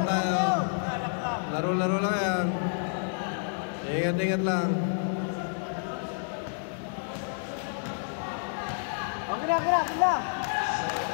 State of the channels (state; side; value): silent; right; digital silence